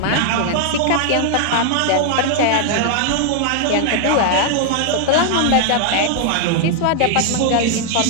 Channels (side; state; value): both; different; correlation 0.00